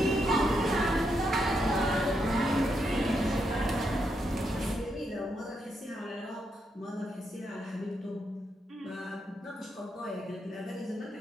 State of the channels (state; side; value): normal; both; correlation 0.81